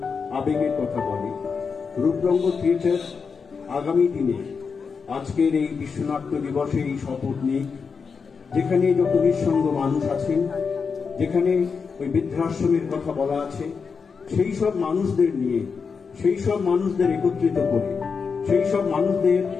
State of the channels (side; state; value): right; quieter; 5.5 dB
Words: আবেগের কথা বলে। রূপরঙ্গ থিয়েটার আগামী দিনে আজকের এই বিশ্বনাট্য দিবসে এই শপথ নিক, যেখানে যত নিঃসঙ্গ মানুষ আছেন, যেখানে ওই বৃদ্ধাশ্রমের কথা বলা আছে, সেই সব মানুষদের নিয়ে, সেই সব মানুষদের একত্রিত করে, সেই সব মানুষদের